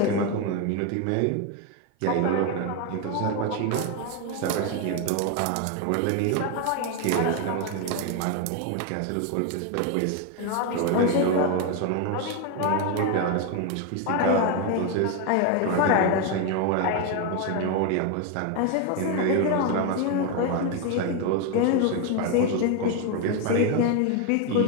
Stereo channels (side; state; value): both; different; correlation 0.02